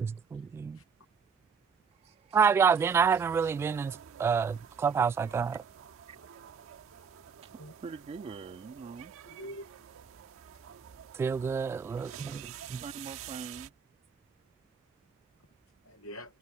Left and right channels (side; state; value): left; quieter; 6.1 dB